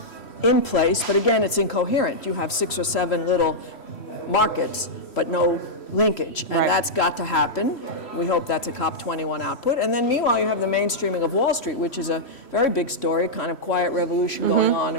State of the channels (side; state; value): right; late; 3.1 ms